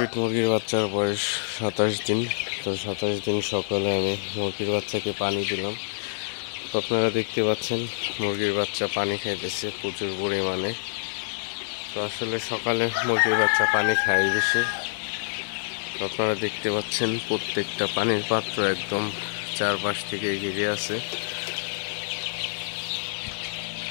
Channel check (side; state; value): right; silent; 60 dB below the other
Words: মুরগির বাচ্চার বয়স 27 দিন। তো 27 দিন সকালে আমি মুরগির বাচ্চাকে পানি দিলাম। তো আপনারা দেখতে পাচ্ছেন মুরগির বাচ্চা পানি খাইতেছে প্রচুর পরিমাণে। তো আসলে সকালে মুরগির বাচ্চা পানি খায় বেশি। তো আপনারা দেখতে পাচ্ছেন প্রত্যেকটা পানির পাত্র একদম চারপাশ থেকে ঘিরে আছে।